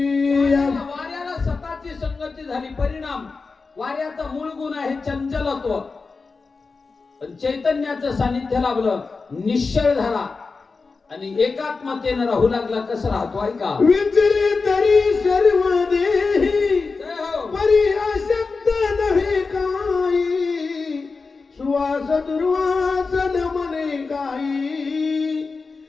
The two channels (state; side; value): quieter; right; 4.3 dB